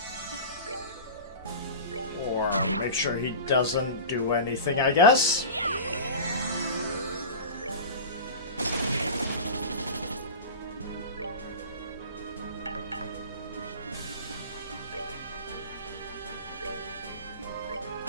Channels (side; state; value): both; inverted; correlation -0.32